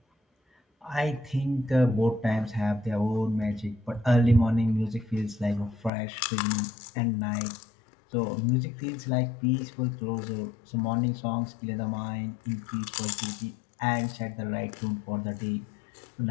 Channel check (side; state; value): right; drops out; at 5.9 s